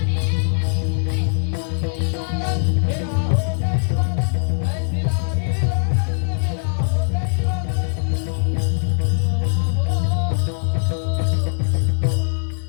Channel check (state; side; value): silent; right; 65 dB below the other